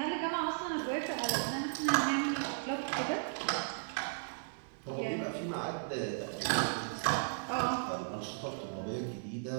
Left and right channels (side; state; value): left; silent; digital silence